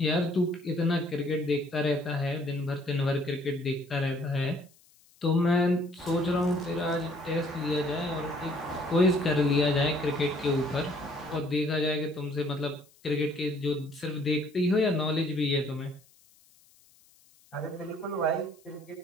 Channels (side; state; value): left; noise; hiss, 30 dB below the sound